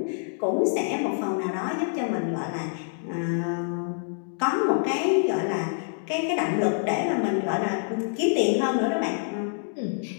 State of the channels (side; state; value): right; silent; digital silence